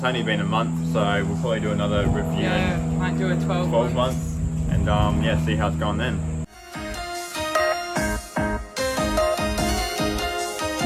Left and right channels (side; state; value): both; identical; correlation 1.00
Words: only been a month, so we'll probably do another review Yeah, might do a 12 months and see how it's gone then.